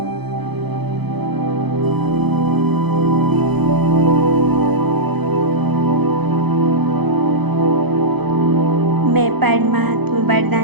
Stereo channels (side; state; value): left; late; 0.98 ms